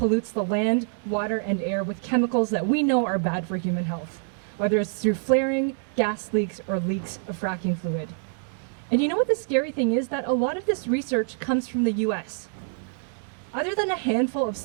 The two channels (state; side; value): silent; left; 59 dB below the other